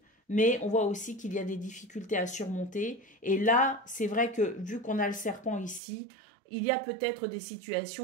mais on voit aussi qu'il y a des difficultés à surmonter. Et là, c'est vrai que vu qu'on a le serpent ici, il y a peut-être des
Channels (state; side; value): drops out; left; at 5.8 s